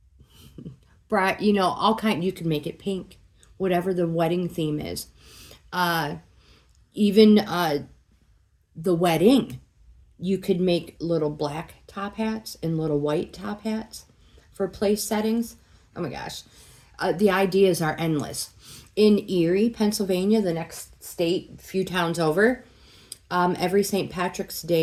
You know, all kind. You can make it pink, whatever the wedding theme is. Even the wedding, you could make little black top hats and little white top hats for place settings. Oh my gosh, the ideas are endless. In Erie, Pennsylvania, the next state, a few towns over, every St. Patrick's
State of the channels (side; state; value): both; identical; correlation 1.00